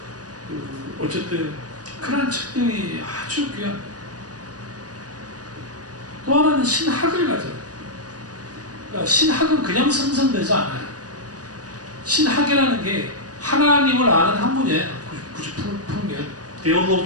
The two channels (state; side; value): late; left; 0.68 ms